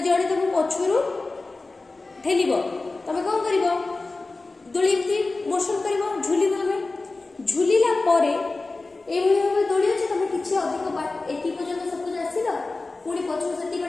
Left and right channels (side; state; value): right; quieter; 3.4 dB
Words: तुम पछरू ठेल तुम कौन कर दोली मोशन कर झुल झुलिला भाव दोली अच्छे तुम किसी अधिक एति पर्यंत सपोज आसिल पुणी पछू से